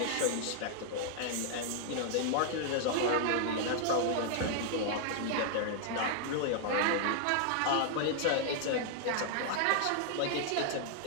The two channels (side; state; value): both; different; correlation 0.00